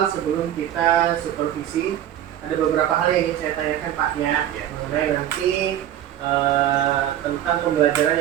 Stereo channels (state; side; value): quieter; left; 11.5 dB